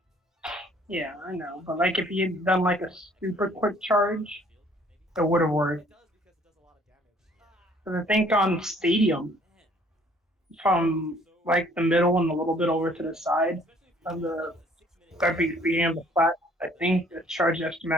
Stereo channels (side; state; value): both; normal; correlation 0.59